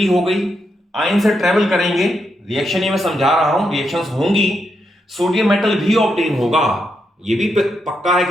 हो गई, आयंस से ट्रेवल करेंगे, रिएक्शन ये मैं समझा रहा हूं, रिएक्शंस होंगी, सोडियम मेटल भी ऑब्टेन होगा, ये भी पक्का है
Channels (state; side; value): normal; both; correlation 0.82